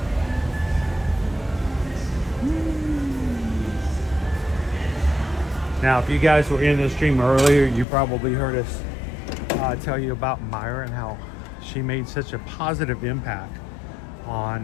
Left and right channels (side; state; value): right; drops out; at 7.9 s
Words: Now, if you guys were in the stream earlier, you probably heard us tell you about Myra and how she made such a positive impact